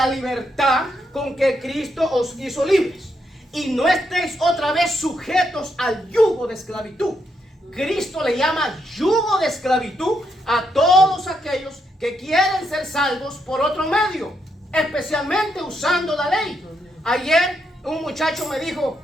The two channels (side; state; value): both; normal; correlation 0.79